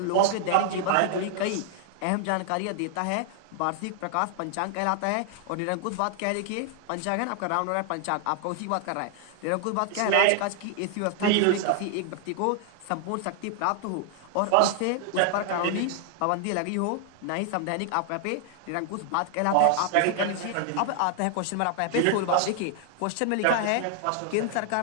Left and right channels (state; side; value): different; both; correlation 0.00